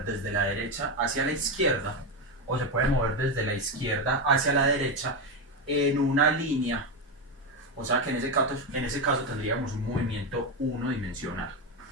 desde la derecha hacia la izquierda, o se puede mover desde la izquierda hacia la derecha en una línea. O sea que en ese caso tendríamos un movimiento unidimensional.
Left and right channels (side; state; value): both; normal; correlation 0.11